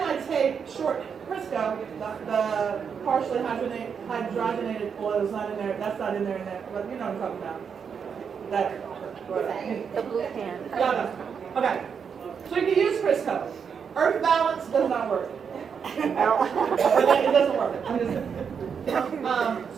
I take short Crisco, the partially hydrogenated oil is not in there. That's not in there. But you know what I'm talking about. The blue can. Yeah. Okay. So you can use Crisco. Earth balance does not work. It doesn't work.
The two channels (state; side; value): quieter; left; 6.7 dB